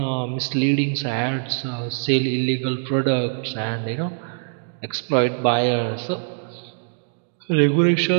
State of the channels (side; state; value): left; silent; 64 dB below the other